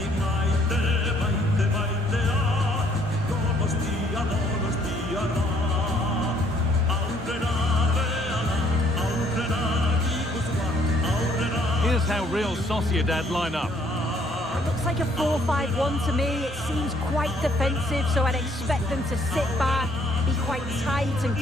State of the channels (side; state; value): both; normal; correlation 0.64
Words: Here's how Real Sociedad line up. It looks like a 4-5-1 to me. It seems quite defensive, so I'd expect them to sit back, be quite tight and